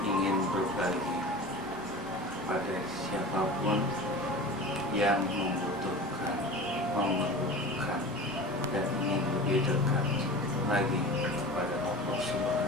ingin berbagi pada siapapun yang membutuhkan, memerlukan, dan ingin lebih dekat lagi kepada Allah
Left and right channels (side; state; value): both; normal; correlation 0.35